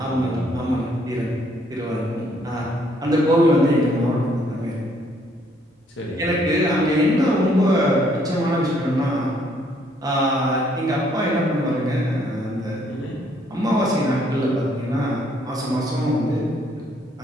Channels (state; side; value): normal; both; correlation 0.67